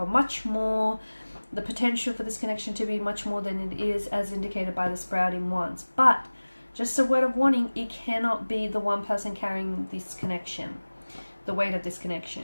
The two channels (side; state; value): both; inverted; correlation -1.00